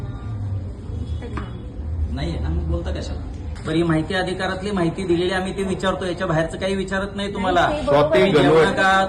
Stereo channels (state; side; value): identical; both; correlation 1.00